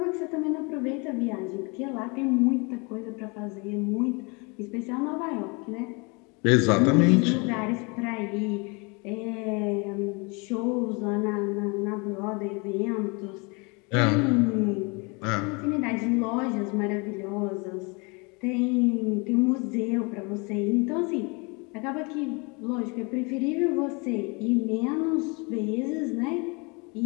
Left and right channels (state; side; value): quieter; right; 30.1 dB